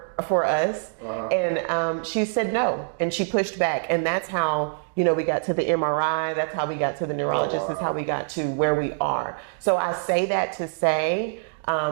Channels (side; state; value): left; silent; digital silence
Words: us. And she said no, and she pushed back. And that's how, we got to the MRI. That's how we got to the neurologist. That's how we got to where we are. So I say that to say,